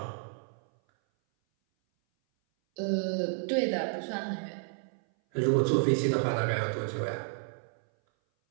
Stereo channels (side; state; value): left; silent; 57 dB below the other